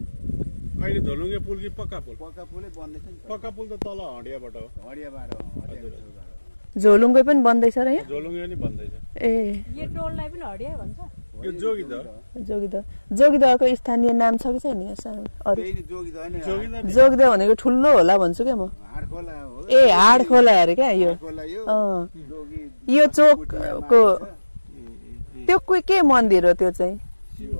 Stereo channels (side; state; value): both; inverted; correlation -1.00